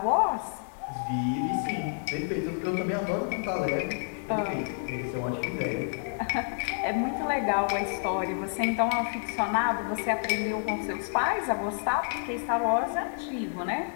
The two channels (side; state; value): right; silent; digital silence